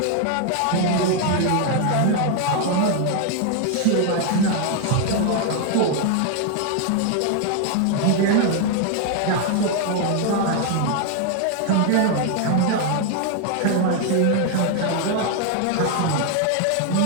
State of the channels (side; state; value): both; different; correlation 0.00